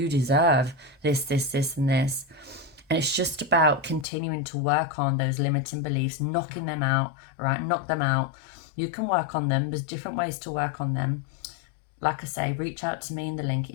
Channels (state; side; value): drops out; right; at 4.0 s